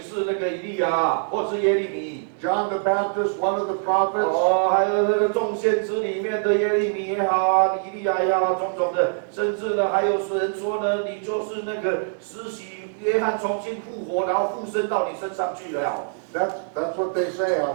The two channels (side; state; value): left; silent; digital silence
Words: 那个以利亚，或者是耶利米。John the Baptist, one of the prophets. 还有那个众先知里面的耶利米也好，以利亚也好，种的，甚至呢还有人说呢，你就是那个施洗约翰重新复活，然后附身到你身上去了。That's what they say